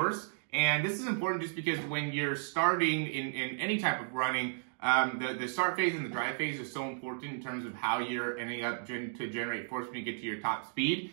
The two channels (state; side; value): silent; left; digital silence